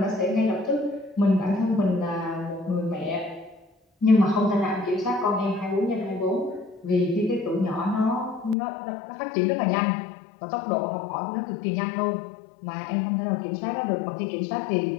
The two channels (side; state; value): right; drops out; at 8.6 s